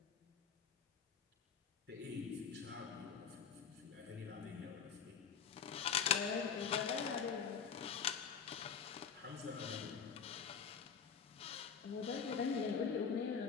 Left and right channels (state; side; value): quieter; right; 6.8 dB